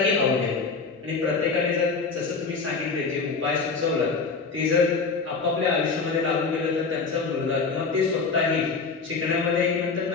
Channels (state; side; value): quieter; right; 4.6 dB